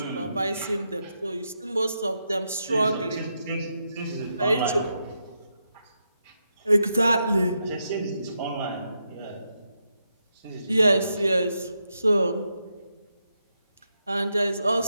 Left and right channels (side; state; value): both; inverted; correlation -0.84